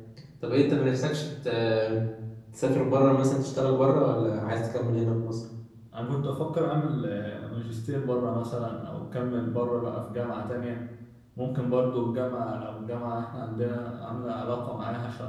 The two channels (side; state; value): both; identical; correlation 1.00